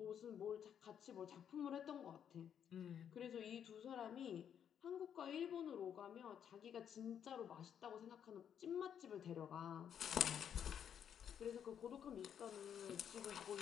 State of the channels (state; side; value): quieter; right; 8.7 dB